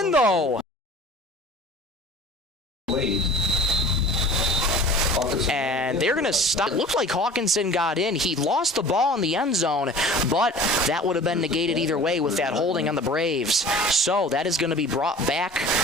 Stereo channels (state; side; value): normal; both; correlation 0.43